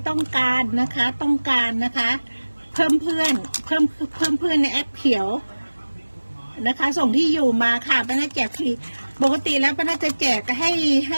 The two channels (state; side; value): inverted; both; correlation -1.00